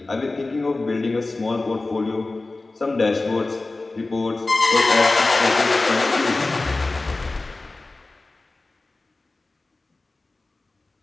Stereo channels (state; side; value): quieter; right; 3.3 dB